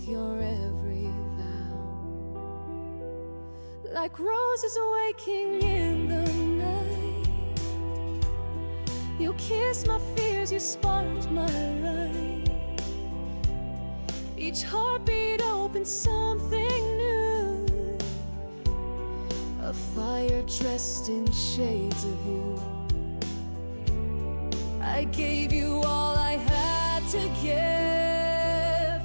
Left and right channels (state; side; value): inverted; both; correlation -1.00